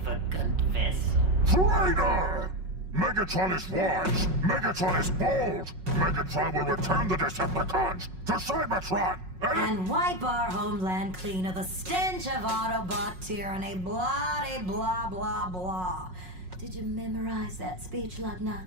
vessel. Traitor! Megatron is wise! Megatron is bold! Megatron will return the Decepticons to Cybertron! And wipe our homeland clean of the stench of Autobot tyranny, blah blah blah. Did you memorize that speech,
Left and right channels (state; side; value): late; left; 5.5 ms